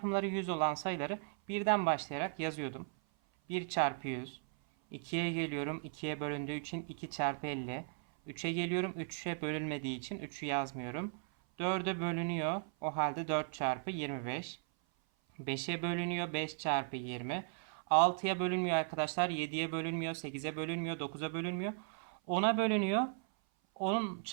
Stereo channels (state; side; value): silent; left; 53 dB below the other